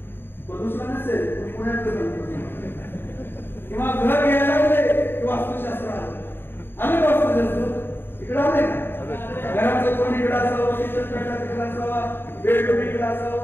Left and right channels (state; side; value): late; right; 0.10 ms